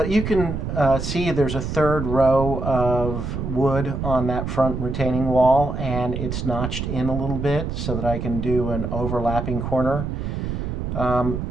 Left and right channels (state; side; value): noise; right; rumble, 4 dB below the sound